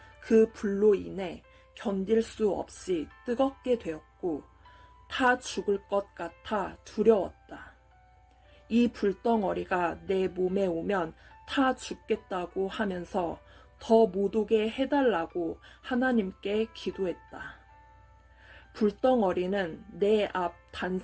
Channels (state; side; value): identical; both; correlation 1.00